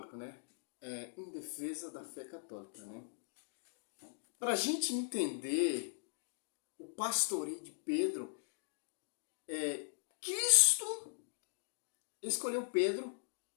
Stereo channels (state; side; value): silent; right; digital silence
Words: né? Em defesa da fé católica, né? Para a gente entender o pastoreio de Pedro, Cristo escolheu Pedro